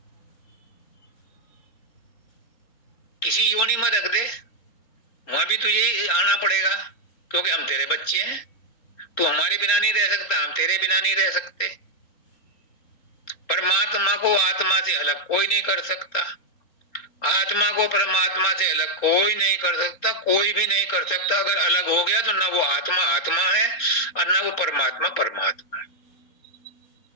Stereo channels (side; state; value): right; late; 3.7 ms